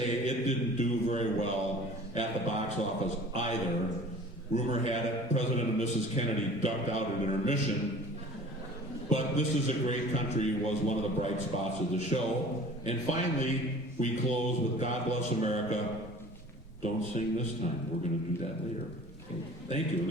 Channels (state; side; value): normal; both; correlation 0.45